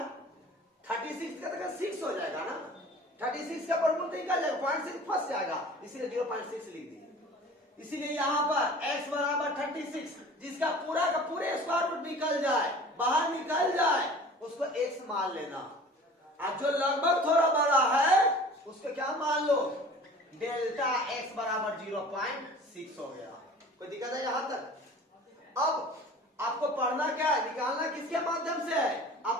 36 का तो 6 हो जाएगा ना, 36 का प्रमुख निकल जाएगा, 0.6 फंस जाएगा, इसीलिए 0.6 लिख दीजिए। इसीलिए यहाँ पर x बराबर 36, जिसका पूरा का पूरे स्क्वायर रूट निकल जाए, बाहर निकल जाए, उसको x मान लेना। और जो लगभग थोड़ा बड़ा है उसको क्या मान लो, डेल्टा x बराबर 0.6 हो गया। कोई दिक्कत है यहां तक? अब आपको पढ़ना क्या है, निकालना किसके माध्यम से है,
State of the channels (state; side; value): normal; both; correlation 0.43